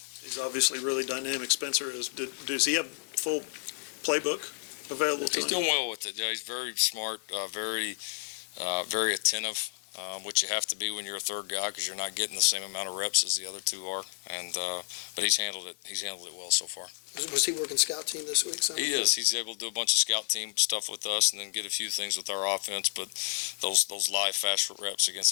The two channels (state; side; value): silent; right; 57 dB below the other